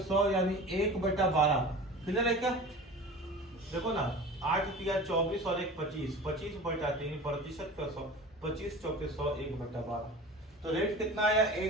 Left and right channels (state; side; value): normal; both; correlation 0.36